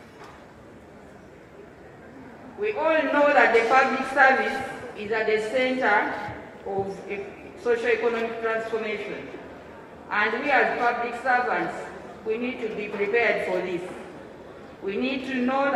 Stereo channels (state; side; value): identical; both; correlation 1.00